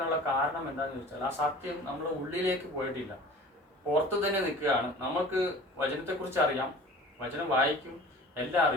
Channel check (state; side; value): normal; both; correlation 0.42